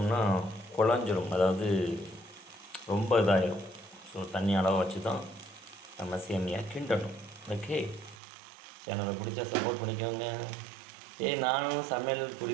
குழஞ்சிரும், அதாவது ரொம்ப இதாகிடும். ஸோ தண்ணி அளவை வச்சு தான் நம்ம சேமியா கிண்டணும். ஓகே, சேனலை பிடிச்சா சப்போர்ட் பண்ணிக்கோங்க. நானும் சமையல்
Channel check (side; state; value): left; drops out; at 8.2 s